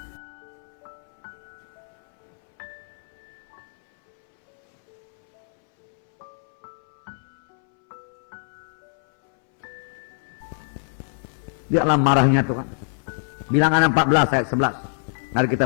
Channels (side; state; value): right; silent; 62 dB below the other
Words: Lihatlah marahnya Tuhan. Bilangan 14 ayat 11. Mari